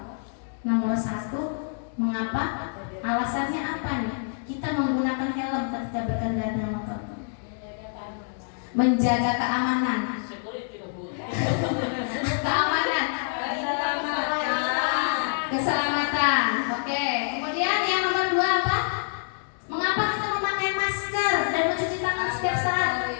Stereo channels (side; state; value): right; silent; digital silence